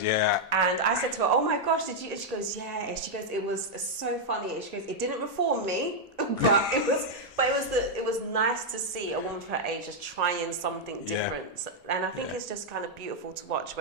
yeah. And I said to her, "Oh my gosh, did you?" And she goes, "Yeah." And she goes, "It was so funny." And she goes, "It didn't reform me, but it was nice to see a woman of her age just trying something different." And I think it's just kind of beautiful to watch.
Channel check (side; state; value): both; normal; correlation -0.02